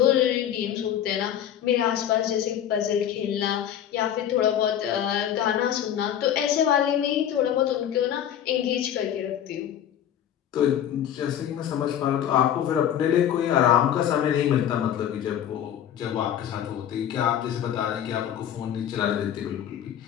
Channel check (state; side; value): quieter; right; 10.1 dB